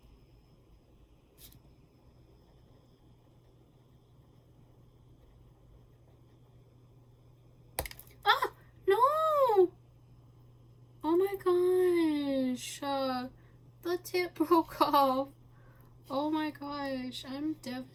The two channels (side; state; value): both; identical; correlation 1.00